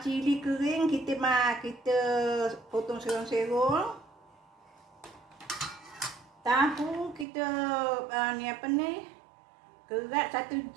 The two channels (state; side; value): drops out; left; at 7.2 s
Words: cili kering, kita potong serong-serong. Tahu kita kerat satu